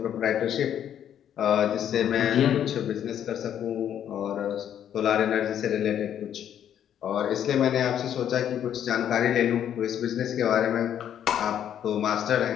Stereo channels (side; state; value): right; quieter; 9.8 dB